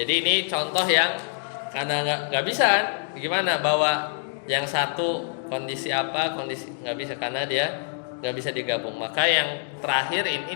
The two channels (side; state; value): right; silent; digital silence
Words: jadi ini contoh yang karena nggak bisa kan, gimana bawa yang satu kondisi apa, kondisi nggak bisa karena dia nggak bisa digabung. Maka yang terakhir ini